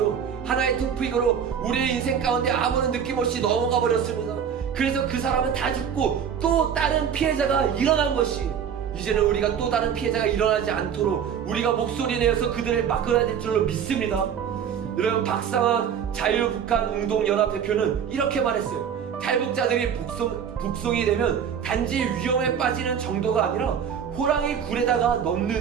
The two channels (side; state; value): left; quieter; 7.9 dB